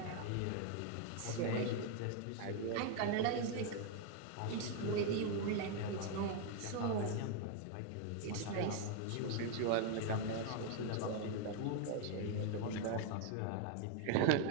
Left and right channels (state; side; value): different; both; correlation 0.00